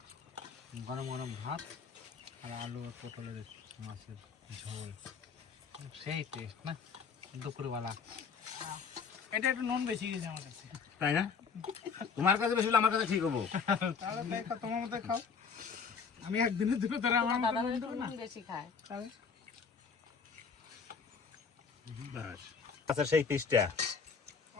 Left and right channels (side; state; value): right; quieter; 5.7 dB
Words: গরম গরম ভাত আর আলু আর পটলের মাছের ঝোল, সেই টেস্ট না দুপুরবেলা। এটা একটু নুন বেশি গেছে আমার কাছে। তাই না? তোমার কাছে বেশি হলে আমার কাছে ঠিক হবো। তাহলে তাই খাও, তোমার মতো খাও। আমি একদিনের দুটো ধরে আমার মতো দাদা নুন ভাই দেবো না। নুন বেশি খায়। তাহলে আচ্ছা, সেই পিসটা